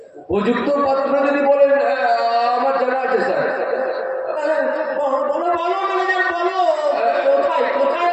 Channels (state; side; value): identical; both; correlation 1.00